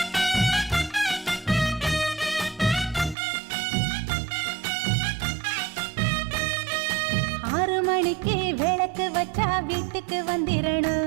மணிக்கு விளக்கு வச்சா வீட்டுக்கு வந்திரணும்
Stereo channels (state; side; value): drops out; left; at 3.2 s